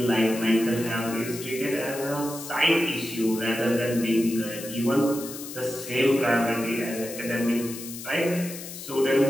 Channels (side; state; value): left; noise; hiss, 11 dB below the sound